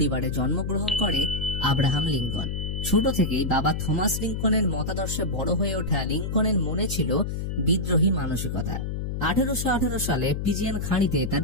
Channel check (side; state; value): left; noise; hum, 3 dB below the sound